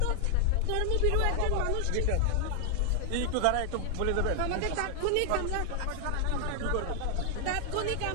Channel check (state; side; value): different; both; correlation 0.00